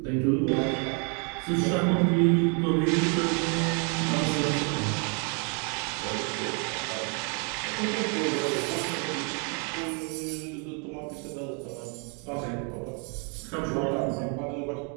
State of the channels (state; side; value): quieter; left; 37.2 dB